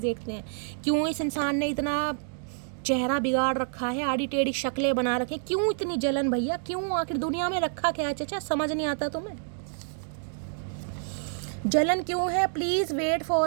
देखते हैं क्यों इस इंसान ने इतना चेहरा बिगाड़ रखा है, आड़ी टेढ़ी शक्लें बना रखे। क्यों इतनी जलन भैया? क्यों? आखिर दुनिया में रखा क्या है चाचा? समझ नहीं आता तुम्हें जलन क्यों है? Please wait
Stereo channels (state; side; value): silent; left; digital silence